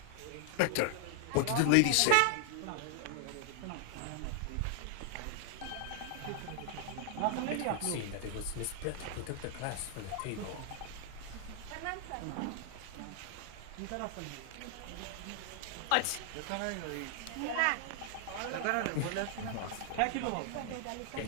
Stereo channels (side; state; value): both; different; correlation 0.00